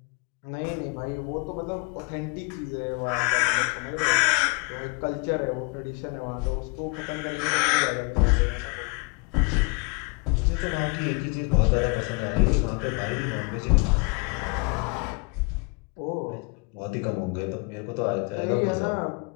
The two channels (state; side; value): quieter; right; 30.0 dB